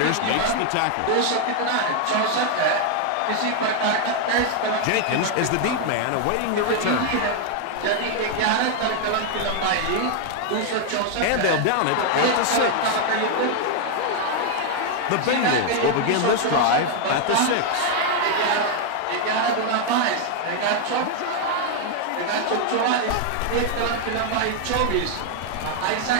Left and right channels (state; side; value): different; both; correlation 0.00